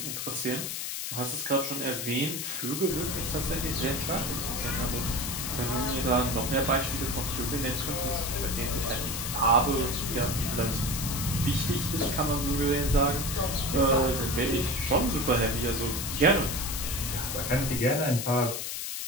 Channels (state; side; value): noise; left; hiss, 4 dB below the sound